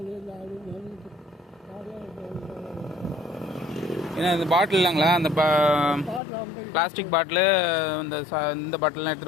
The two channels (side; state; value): right; drops out; at 6.2 s